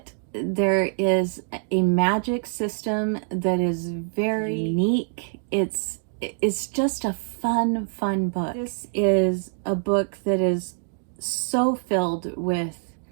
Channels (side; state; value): left; silent; digital silence